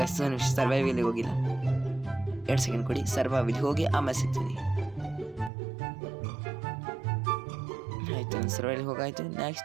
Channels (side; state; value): left; drops out; at 5.5 s